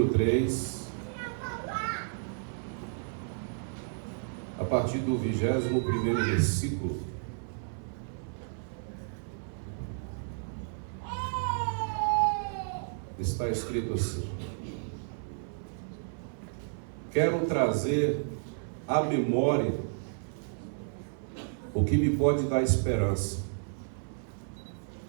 3, a partir do 21º versículo. Está escrito assim: quero trazer à memória o que me pode dar esperança.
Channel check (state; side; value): silent; left; 55 dB below the other